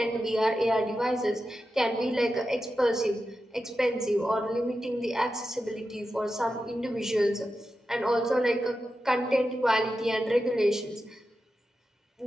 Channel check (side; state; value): both; normal; correlation 0.91